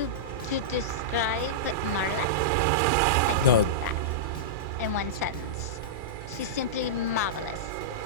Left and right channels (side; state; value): both; normal; correlation -0.11